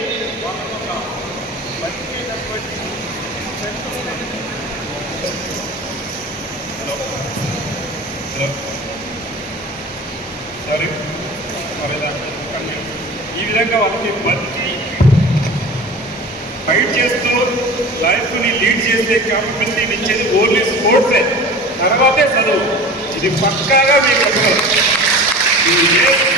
ఈ విధంగా వాళ్ళకి బతికి ఫైట్ చేస్తూ లైఫ్ని లీడ్ చేసే క్యాపబిలిటీని ఇచ్చేది ఓన్లీ స్పోర్ట్సే, తర్వాతే చదువు. ఇది పక్కాగా మీకు చెప్పగలరు. ఏ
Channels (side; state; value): both; normal; correlation 0.37